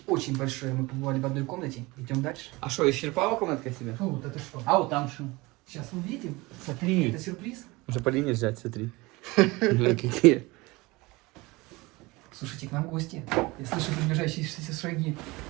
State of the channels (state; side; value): quieter; left; 22.7 dB